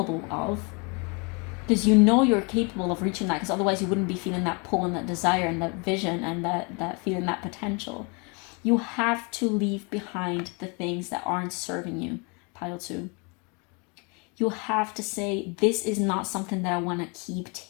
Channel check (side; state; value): right; quieter; 32.3 dB